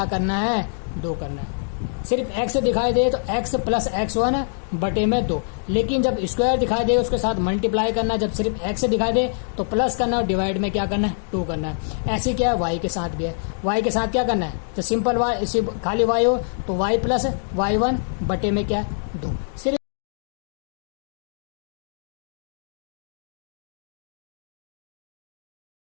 करना है, 2 करना है। सिर्फ एक्स दिखाई दे तो एक्स प्लस एक्स वन बटे में 2, लेकिन जब स्क्वायर दिखाई दे उसके साथ मल्टीप्लाई करना, जब सिर्फ एक्स दिखाई दे तो प्लस करना और डिवाइड में क्या करना है, 2 करना है। ऐसे क्या है वाई के साथ भी है, वाई के साथ क्या करना है, जब सिंपल वाई खाली वाई हो तो वाई प्लस वाई वन बटे में क्या है, 2। सिर्फ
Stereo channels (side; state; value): right; silent; digital silence